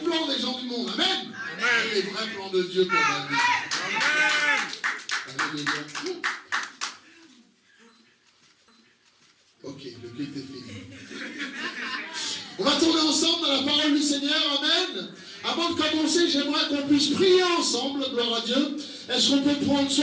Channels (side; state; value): both; identical; correlation 1.00